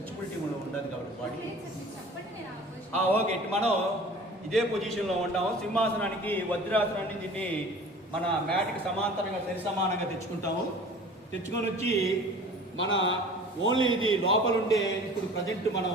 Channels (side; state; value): both; normal; correlation 0.44